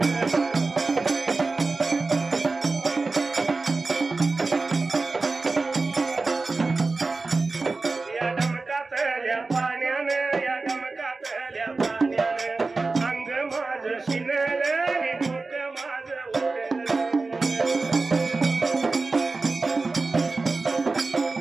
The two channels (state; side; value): quieter; left; 3.7 dB